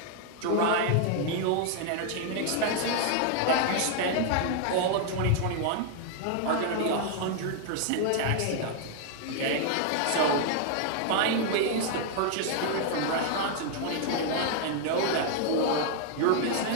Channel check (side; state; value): both; different; correlation 0.00